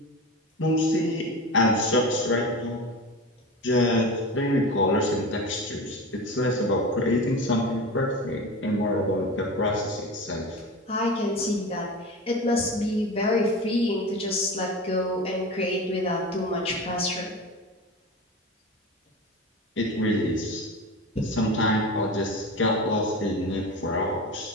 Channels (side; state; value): both; normal; correlation 0.29